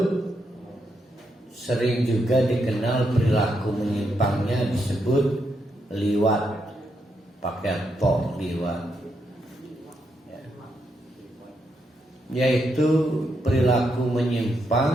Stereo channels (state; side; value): normal; both; correlation 0.80